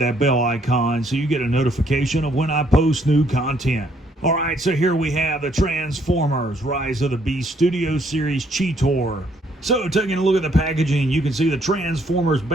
bell icon so you get a notification of when I post new content. Alright, so here we have the Transformers Rise of the Beast Studio Series Cheetor. So, taking a look at the packaging, you can see the Transformers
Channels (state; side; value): normal; both; correlation 0.68